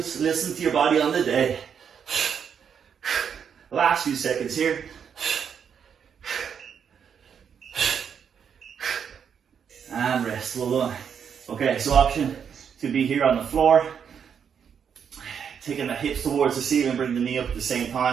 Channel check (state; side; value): quieter; left; 7.4 dB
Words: listen to your body on the day. Last few seconds here. And rest. Well done. Okay, so option to be here on the floor, taking the hips towards the ceiling, bring the knee up at the same